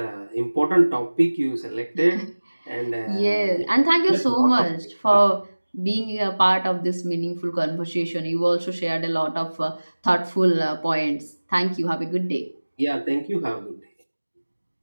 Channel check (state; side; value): inverted; both; correlation -1.00